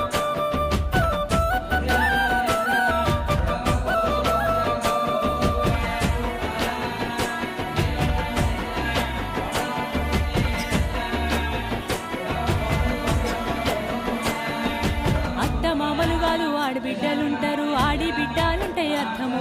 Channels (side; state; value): both; identical; correlation 1.00